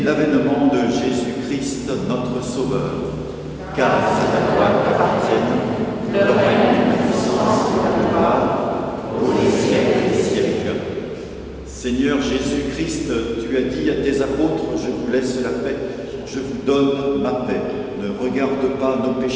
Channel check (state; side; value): identical; both; correlation 1.00